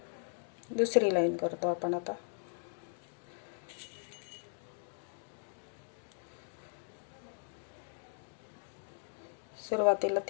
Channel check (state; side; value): silent; right; 53 dB below the other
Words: दुसरी लाईन करतो आपण आता। सुरुवातीला